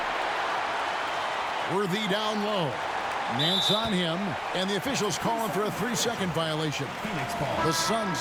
Worthy down low. Nance on him, and the officials calling for a 3-second violation. The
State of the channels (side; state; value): both; identical; correlation 1.00